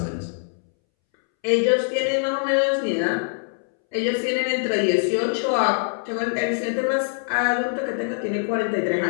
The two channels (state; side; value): silent; right; 63 dB below the other